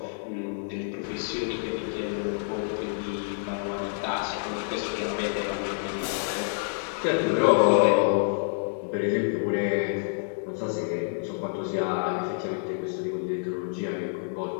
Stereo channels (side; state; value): right; silent; digital silence